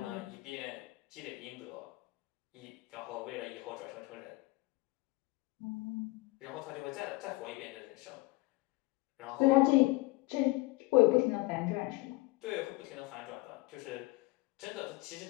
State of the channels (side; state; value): right; quieter; 22.0 dB